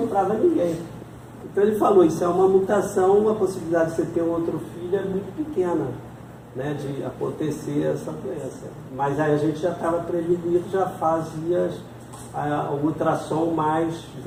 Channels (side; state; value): both; identical; correlation 1.00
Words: ninguém. Então ele falou, isso é uma mutação, a possibilidade de você ter um outro filho é muito pequena, né, de acontecer essa doença. Mas aí a gente já estava prevenido, já fazia o ultrassom mais